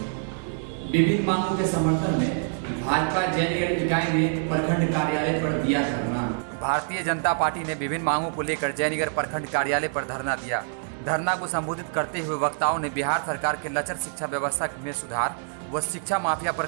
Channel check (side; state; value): left; silent; digital silence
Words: विभिन्न मांगों के समर्थन में भाजपा जयनगर इकाई ने प्रखंड कार्यालय पर दिया धरना। भारतीय जनता पार्टी ने विभिन्न मांगों को लेकर जयनगर प्रखंड कार्यालय पर धरना दिया। धरना को संबोधित करते हुए वक्ताओं ने बिहार सरकार के लचर शिक्षा व्यवस्था में सुधार व शिक्षा माफिया पर